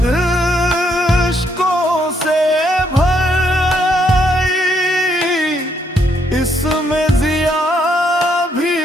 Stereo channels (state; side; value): normal; both; correlation 0.73